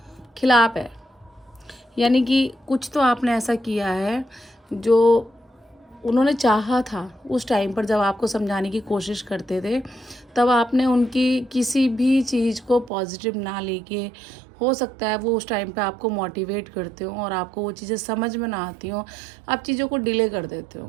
खिलाफ है। यानी कि कुछ तो आपने ऐसा किया है जो उन्होंने चाहा था उस टाइम पर, जब आपको समझाने की कोशिश करते थे, तब आपने उनकी किसी भी चीज़ को पॉजिटिव ना लेके, हो सकता है वो उस टाइम पे आपको मोटिवेट करते हो और आपको वो चीज़ें समझ में ना आती हो, आप चीज़ों को डिले कर देते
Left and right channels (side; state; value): left; drops out; at 12.9 s